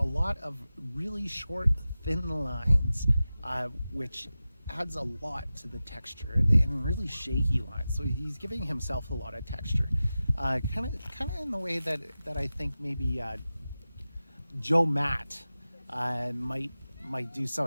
lot of really short, thin lines, which adds a lot to the texture, and really shaky lines. So he's giving himself a lot of texture, kind of in the way that I think maybe Joe Matt might do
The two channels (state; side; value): inverted; both; correlation -0.95